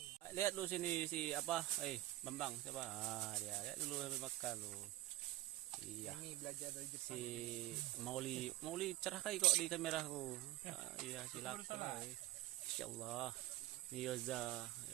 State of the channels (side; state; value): left; quieter; 16.2 dB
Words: Lihat lu sini si apa? Bambang siapa? Dia lihat dulu sambil makan lu. Iya. Ini belajar dari Jepang. Si Mauli cerah kali kok di kameraku. Iya, silakan. Insyaallah. Yoza.